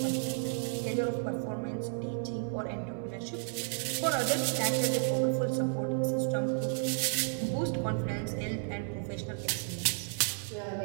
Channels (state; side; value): silent; left; 56 dB below the other